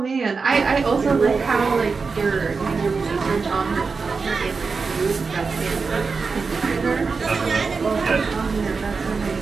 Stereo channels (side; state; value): left; quieter; 4.7 dB